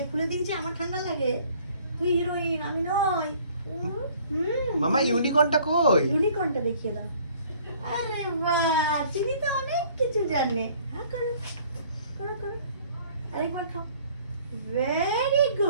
খুলে দিয়েছে। আমার ঠান্ডা লাগে, তুই হিরোইন আমি নয়। মামা ইউনিকর্নটা কই? ইউনিকর্নটা দেখিয়ে দাও। আরে বাহ, চিনি তো অনেক কিছু জানে। হ্যাঁ করো করো করো, আরেকবার খাও। ভেরি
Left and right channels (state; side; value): inverted; both; correlation -0.56